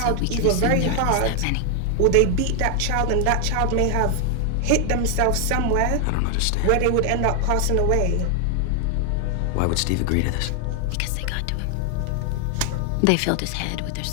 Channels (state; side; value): different; both; correlation 0.00